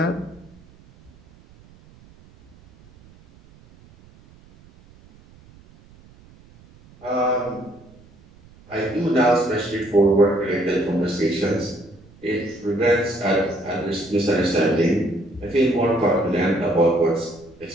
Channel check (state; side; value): noise; right; rumble, 26 dB below the sound